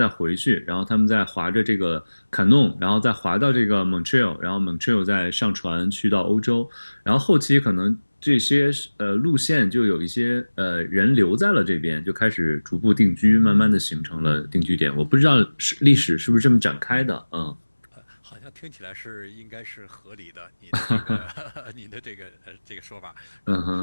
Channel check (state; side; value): inverted; both; correlation -1.00